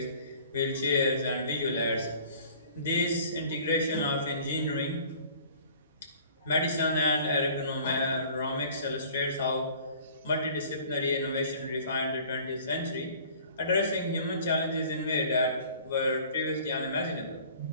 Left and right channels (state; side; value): inverted; both; correlation -0.50